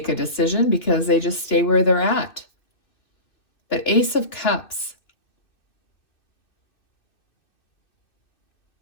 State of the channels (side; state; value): right; late; 2.6 ms